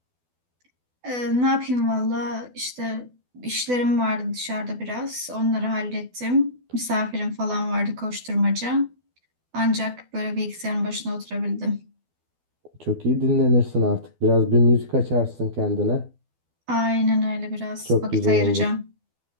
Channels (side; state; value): left; late; 12 ms